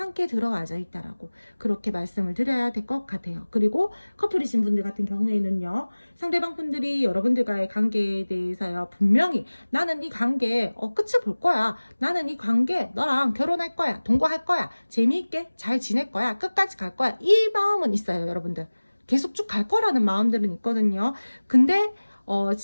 들어와져 있다라고 그렇게 말씀을 드려야 될 것 같아요. 그리고 커플이신 분들 같은 경우에는요, 상대방 분들이 여러분들과의 관계에 대해서요, 분명히 나는 이 관계 끝을 볼 거야, 나는 이 관계 너랑 결혼할 거야, 동거할 거야, 재미있게 잘 지낼 거야, 끝까지 갈 거야, 이 마음은 있어요. 여러분들 계속 쭉 갈 거라는 마음들은 있거든요. 근데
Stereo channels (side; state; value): both; inverted; correlation -1.00